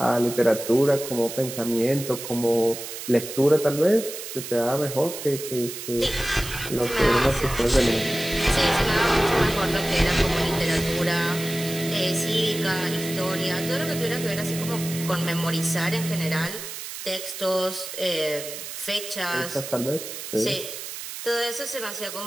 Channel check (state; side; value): noise; right; hiss, 9 dB below the sound